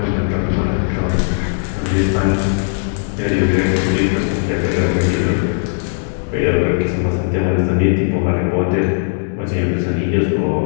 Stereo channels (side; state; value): right; silent; digital silence